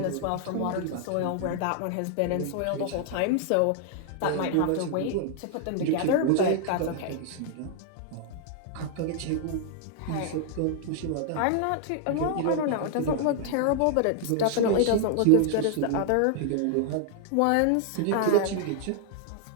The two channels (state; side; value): different; both; correlation 0.00